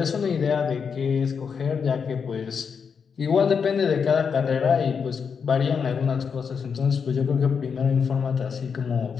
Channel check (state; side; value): quieter; right; 6.3 dB